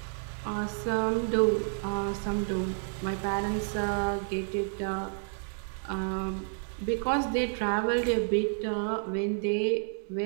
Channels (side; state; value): left; silent; 58 dB below the other